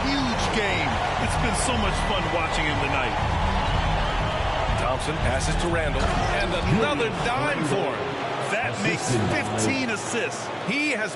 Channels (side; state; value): both; identical; correlation 1.00